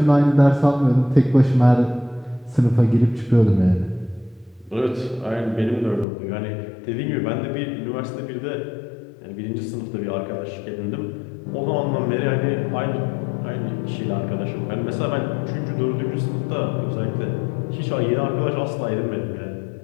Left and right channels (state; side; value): drops out; right; at 6.1 s